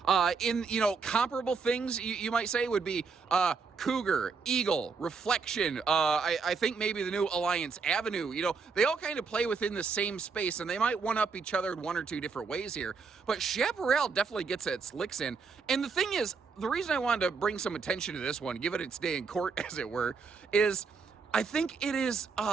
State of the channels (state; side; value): quieter; left; 5.0 dB